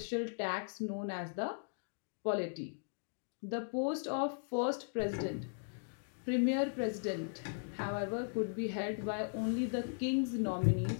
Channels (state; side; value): silent; right; digital silence